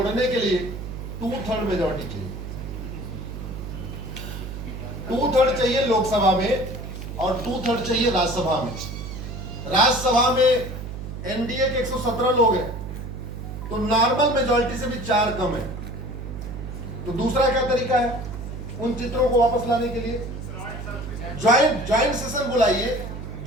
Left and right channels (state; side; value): noise; right; hum, 8 dB below the sound